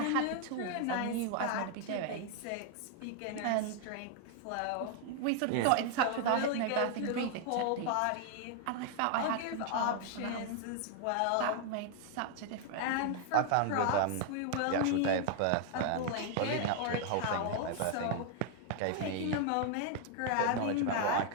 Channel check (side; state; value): both; different; correlation 0.00